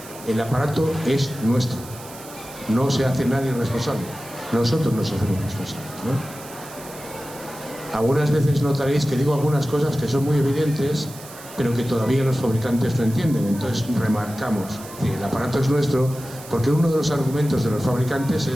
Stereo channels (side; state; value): right; noise; hiss, 17 dB below the sound